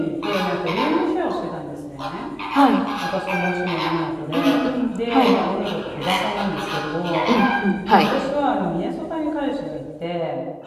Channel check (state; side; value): identical; both; correlation 1.00